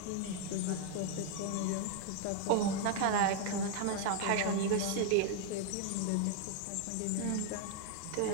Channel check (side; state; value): both; different; correlation 0.00